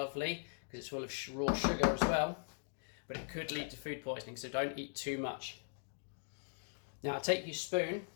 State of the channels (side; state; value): right; silent; digital silence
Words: because it's full of raw sugar as well, but it could lead to food poisoning, so don't eat too much. Now take your spoon